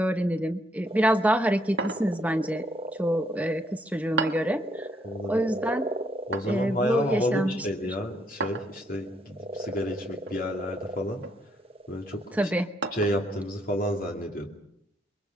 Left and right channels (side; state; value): both; normal; correlation 0.72